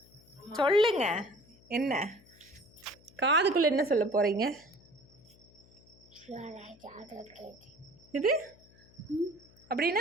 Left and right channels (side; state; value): left; noise; hum, 27 dB below the sound